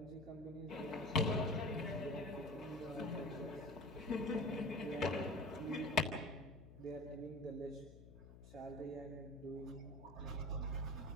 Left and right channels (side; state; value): left; noise; hum, 16 dB below the sound